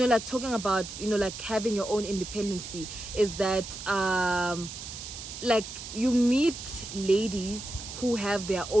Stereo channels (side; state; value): right; noise; hiss, 10 dB below the sound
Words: like talking about, you know, like having your own independency is that, like, you meet ladies who have their